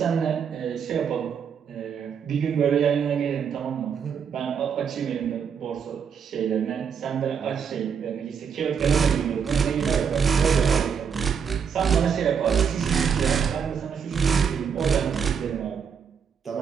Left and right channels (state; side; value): quieter; left; 7.0 dB